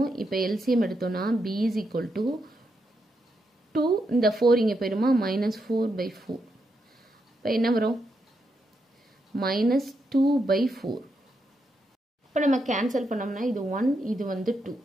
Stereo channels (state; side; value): normal; both; correlation 0.82